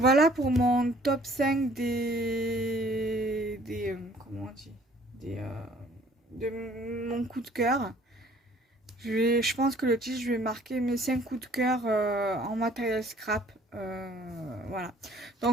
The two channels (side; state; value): both; normal; correlation 0.57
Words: pour mon top 5 comment on dit, de mon coup de cœur. Je pense que le titre, je vais marquer mes 5 coups de cœur en matériel scrap. Voilà.